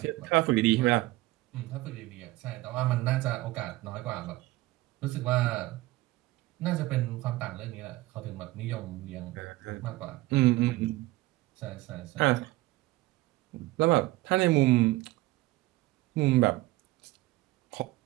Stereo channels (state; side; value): quieter; left; 18.8 dB